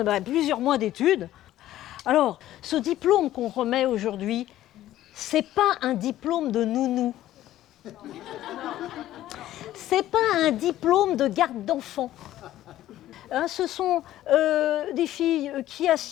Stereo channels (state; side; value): quieter; right; 13.7 dB